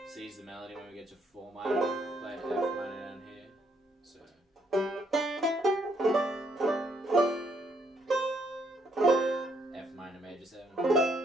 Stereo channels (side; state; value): both; normal; correlation 0.71